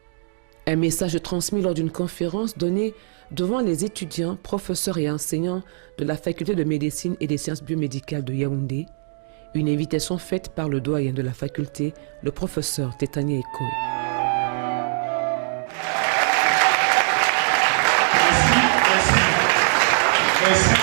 Un message transmis lors d'une conférence donnée devant les étudiants, professeurs et enseignants de la faculté de médecine et des sciences biomédicales de Yaoundé. Une invitation faite par le doyen de la faculté, le professeur Tétani Ekoé.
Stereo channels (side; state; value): left; silent; digital silence